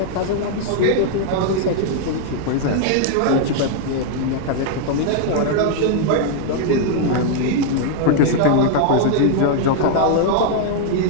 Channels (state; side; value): different; both; correlation -0.01